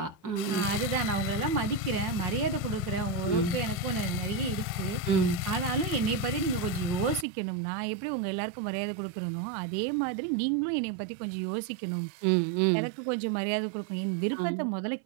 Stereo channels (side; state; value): left; drops out; at 7.2 s